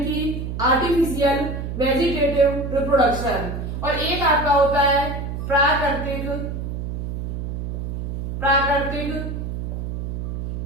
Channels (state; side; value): noise; right; hum, 5 dB below the sound